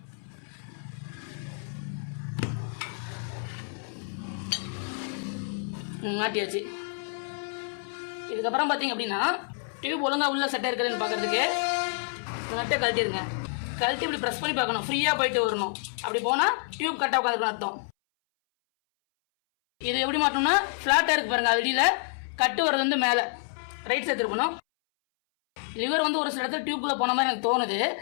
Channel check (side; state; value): right; silent; 59 dB below the other